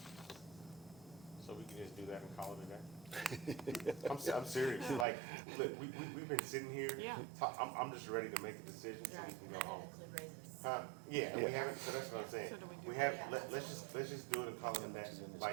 So we can just do that and call it a day? I'm serious, like, look, we've been sitting here. Yeah. I'm just ready to make a decision so we can go home. Include raises. Huh, yeah, and we haven't, so that's what I'm saying. So do we do We have, let's just do it and call it a day.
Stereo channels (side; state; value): left; drops out; at 5.1 s